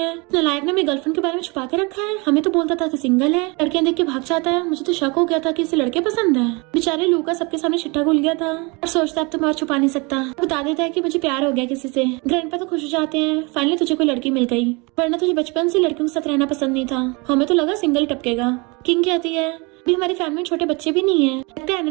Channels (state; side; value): quieter; left; 28.4 dB